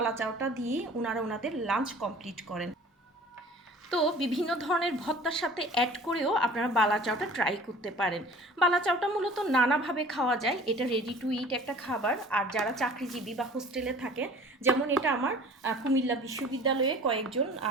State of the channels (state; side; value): normal; both; correlation 0.46